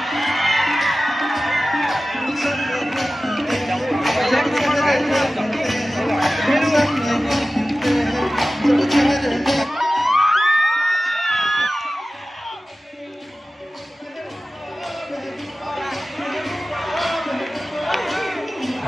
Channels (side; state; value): both; normal; correlation 0.96